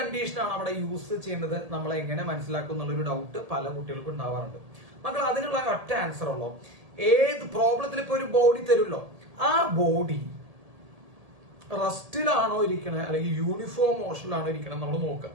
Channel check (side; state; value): left; late; 1.8 ms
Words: ആണ് അവിടെ യൂസ് ചെയ്യേണ്ടത് നമ്മൾ എങ്ങനെ മനസ്സിലാക്കും എന്നുള്ളൊരു ഡൗട്ട് പല കുട്ടികൾക്കും ഉണ്ടാവാറുണ്ട്. മക്കൾ അതിനുള്ള ഒറ്റ ആൻസർ ഉള്ളൂ. ഏത് പ്രോബ്ലത്തിൽ ഇപ്പൊ ഒരു ബോഡി തരുമല്ലോ, ആ ബോഡി റെസ്റ്റിലാണോ ഇരിക്കണേ അല്ലെങ്കിൽ യൂണിഫോം മോഷനിലാണോ ഇരിക്കണം നമ്മൾ നോക്കുക.